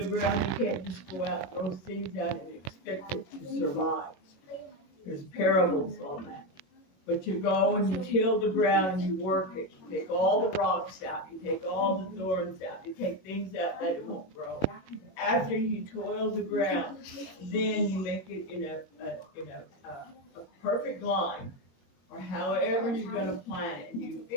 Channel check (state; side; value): late; right; 21 ms